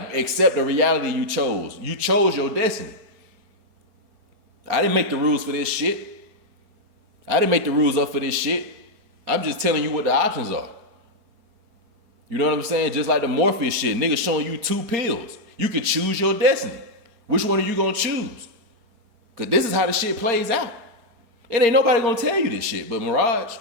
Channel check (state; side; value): late; left; 4.3 ms